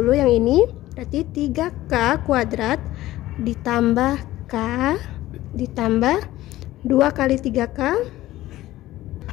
yang ini. Berarti 3K kuadrat ditambah K ditambah 2 kali 3K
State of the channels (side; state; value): right; quieter; 15.8 dB